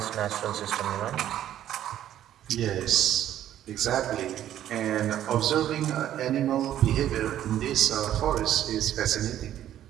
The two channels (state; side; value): quieter; left; 11.7 dB